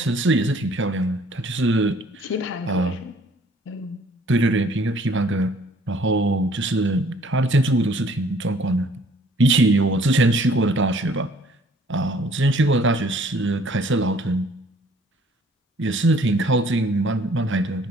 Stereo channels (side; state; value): both; normal; correlation 0.57